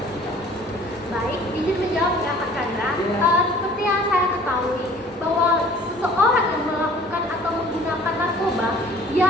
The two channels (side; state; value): both; normal; correlation 0.50